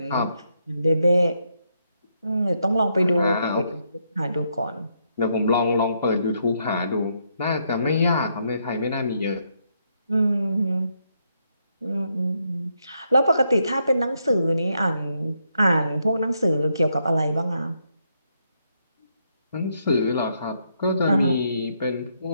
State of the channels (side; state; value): both; inverted; correlation -0.77